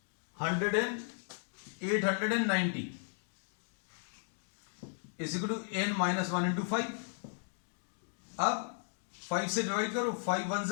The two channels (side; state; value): right; silent; digital silence